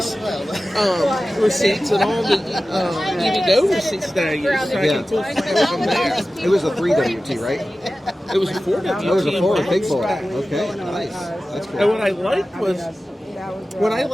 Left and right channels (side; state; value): both; normal; correlation 0.95